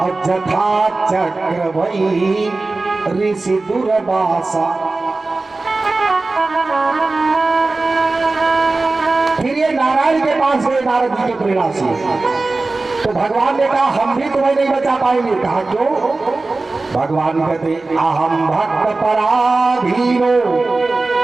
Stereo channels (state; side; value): quieter; left; 3.4 dB